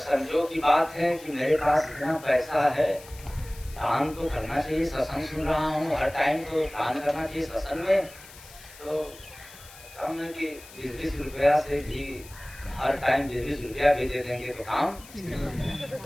की बात है कि मेरे पास इतना पैसा है, दान तो करना चाहिए। सत्संग सुन रहा हूँ, हर टाइम तो दान करना चाहिए सत्संग में। तो कम है कि 20 रुपया से भी हर टाइम 20 रुपया भी दे देंगे तो काम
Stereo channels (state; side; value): noise; left; hiss, 19 dB below the sound